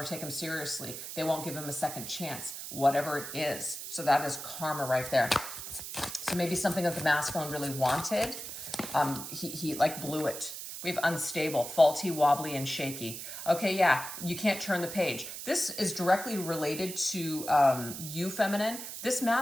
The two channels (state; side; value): noise; right; hiss, 8 dB below the sound